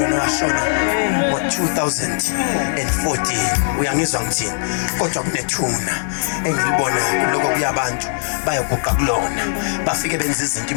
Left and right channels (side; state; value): right; silent; 60 dB below the other